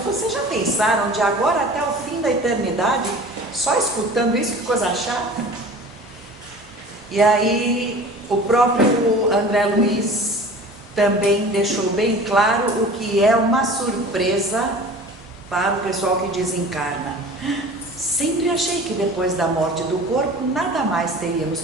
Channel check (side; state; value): both; normal; correlation 0.41